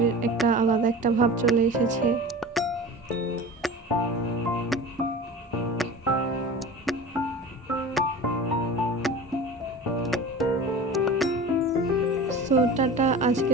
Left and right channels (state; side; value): normal; both; correlation 0.34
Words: একটা আলাদা একটা ভাব চলে এসেছে। সো টাটা,